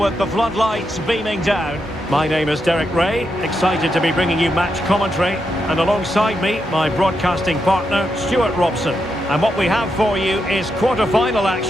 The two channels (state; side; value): normal; both; correlation 0.84